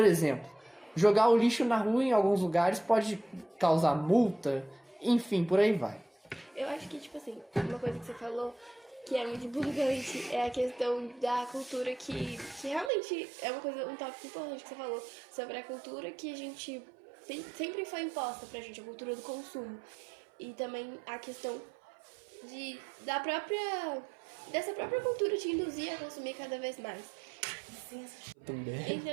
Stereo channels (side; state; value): left; drops out; at 12.9 s